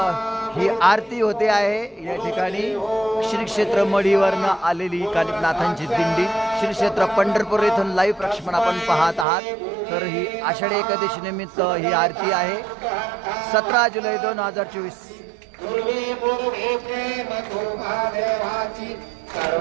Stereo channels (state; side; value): drops out; left; at 9.2 s